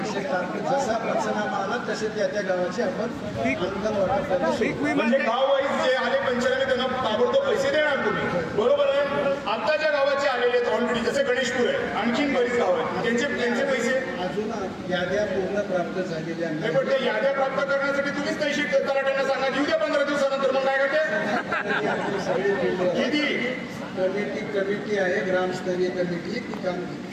जसा पंचनामा आला तसे त्या गावाचे आपण अनुदान वाटप. म्हणजे गाव वाईज जे आले पंचनामे त्यांना ताबडतोब पैसे देणार तुम्ही, बरोबर आहे? आता ज्या गावाचे आलेले आहेत ऑलरेडी, जसे गणेशपूर आहे, आणखीन बरीच गाव आहेत, त्यांचे पैसे अजून याद्या पूर्ण प्राप्त झालेल्या नाही. पण ते याद्या प्राप्त करण्यासाठी तुम्हीच पैसे तलाट्यांना सांगा, येऊ द्या 15 दिवसानंतर. मग काय करते किती कमिटी आहे, ग्रामस्तरीय कमिटी, ती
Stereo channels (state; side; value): identical; both; correlation 1.00